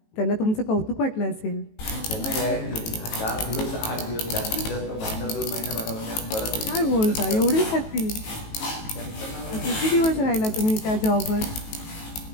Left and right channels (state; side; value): late; right; 18 ms